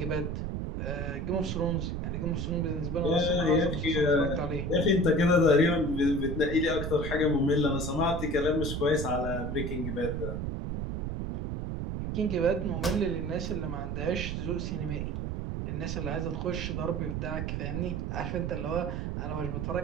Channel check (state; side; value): noise; right; rumble, 3 dB below the sound